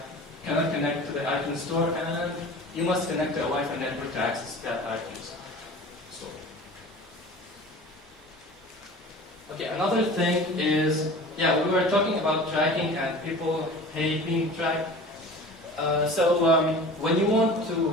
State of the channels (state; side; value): normal; both; correlation 0.39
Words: cannot connect to the iTunes store, and you must connect to a Wi-Fi network to access that iTunes store. Okay, another thing is, we were talking about tracking and people hate being tracked. When you want